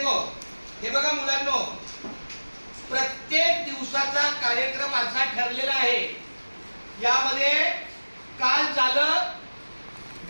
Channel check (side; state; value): both; inverted; correlation -1.00